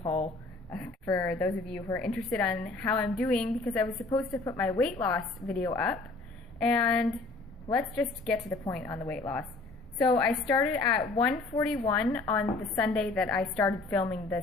haul for those of you who are interested on how I'm doing, because I was supposed to put my weight loss video up, and let's just get to the point on the weight loss. So I started at 141 on the Sunday that I started filming the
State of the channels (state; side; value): quieter; right; 3.3 dB